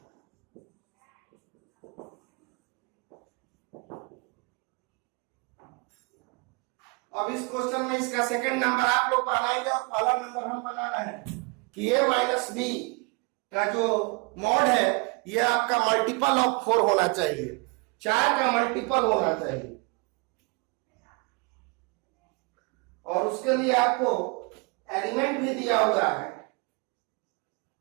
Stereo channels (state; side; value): quieter; left; 30.2 dB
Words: अब इस क्वेश्चन में इसका सेकंड नंबर आप लोग बनाएंगे और पहला नंबर हम बना रहे हैं कि a माइनस बी का जो मॉड है ये आपका मल्टीपल ऑफ 4 होना चाहिए, 4 का मल्टीपल होना चाहिए। और उसके लिए आपको एलिमेंट भी दिया हुआ है।